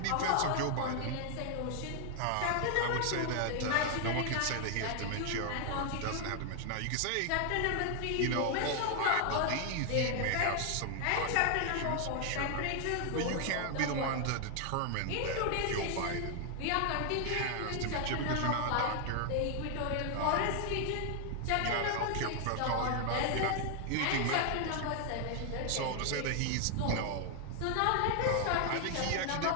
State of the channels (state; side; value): different; both; correlation 0.00